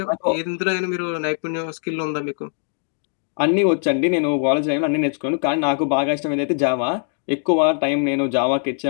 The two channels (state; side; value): silent; right; 57 dB below the other